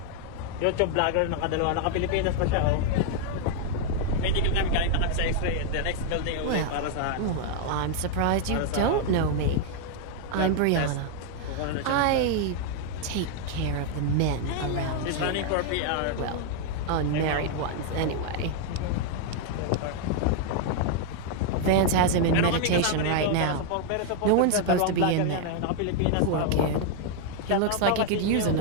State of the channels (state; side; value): different; both; correlation 0.00